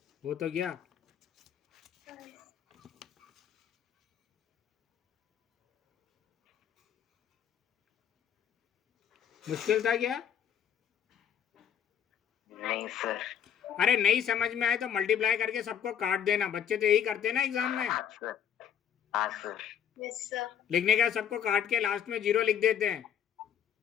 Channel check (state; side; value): quieter; right; 8.8 dB